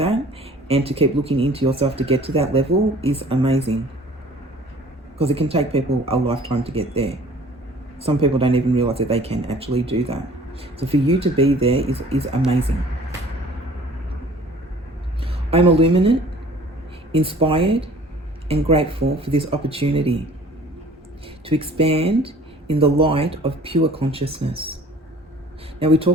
and to keep looking into yourself to get to that level is amazing. because it can take people a lifetime to get there. Some people don't even realize that they can actually do that. So for you to be there is amazing. I'm illuminate, inspired, and grateful for this opportunity to expand in the light of pure consciousness. Now, we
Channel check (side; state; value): both; normal; correlation 0.50